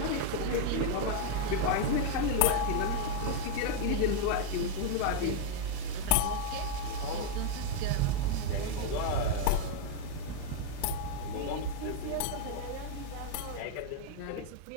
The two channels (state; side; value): different; both; correlation 0.00